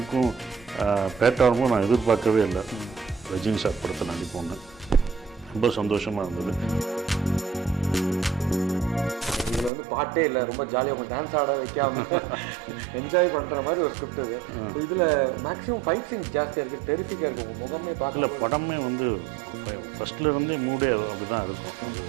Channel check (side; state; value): left; drops out; at 9.7 s